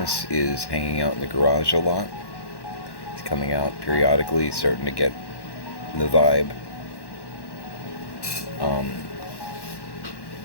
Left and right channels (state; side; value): late; right; 1.1 ms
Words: is hanging out in the garage a lot. He's coming out periodically, starting to get the vibe. I'm